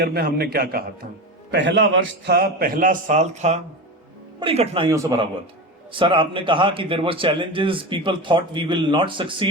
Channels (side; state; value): both; normal; correlation 0.24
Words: में हमने क्या कहा था। पहला वर्ष था, पहला साल था, बड़ी कठिनाइयों से भरा हुआ था। सर आपने कहा कि there was challenges, people thought we will not